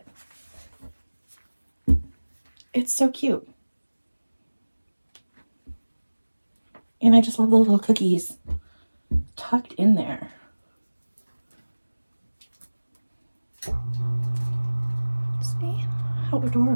It's so cute. And I just love the little cookies tucked in there. See? How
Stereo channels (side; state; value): both; inverted; correlation -1.00